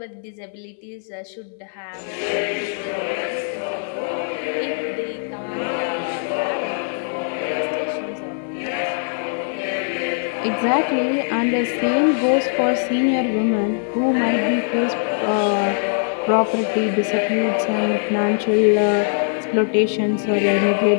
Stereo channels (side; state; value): right; silent; digital silence